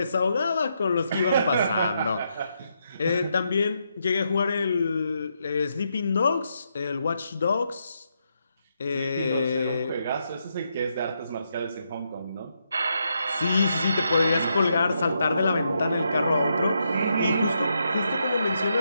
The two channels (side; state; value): both; inverted; correlation -0.80